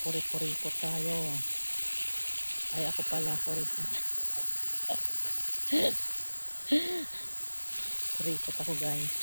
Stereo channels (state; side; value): inverted; both; correlation -1.00